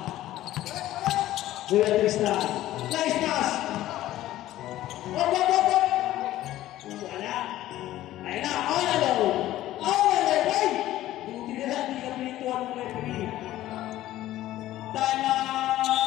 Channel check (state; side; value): quieter; right; 14.5 dB